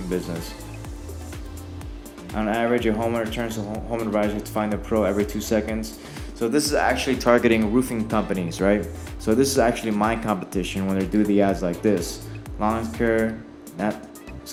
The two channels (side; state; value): both; identical; correlation 1.00